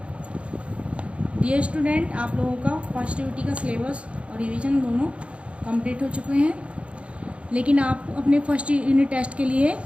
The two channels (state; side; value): late; left; 0.061 ms